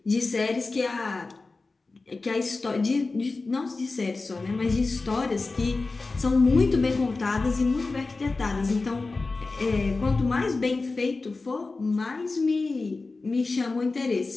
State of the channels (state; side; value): quieter; right; 3.7 dB